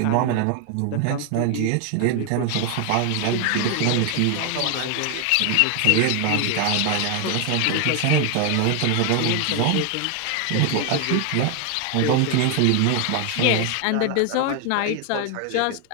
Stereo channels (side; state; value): both; different; correlation 0.01